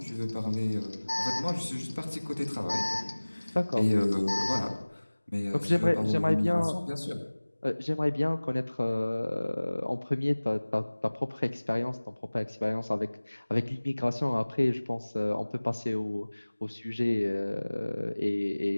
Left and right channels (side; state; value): both; inverted; correlation -1.00